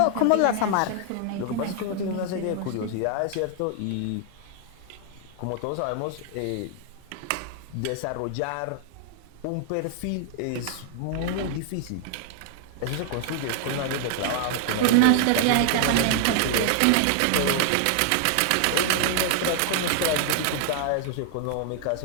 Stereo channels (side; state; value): both; different; correlation 0.00